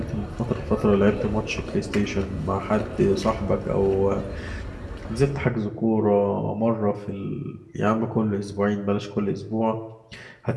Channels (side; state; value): both; identical; correlation 1.00